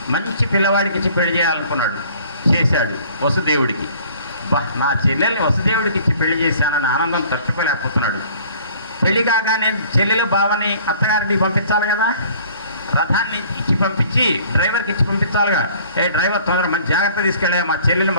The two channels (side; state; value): both; inverted; correlation -0.53